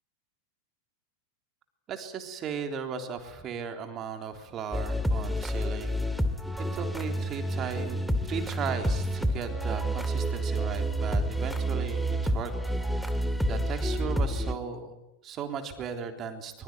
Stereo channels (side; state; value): both; normal; correlation 0.75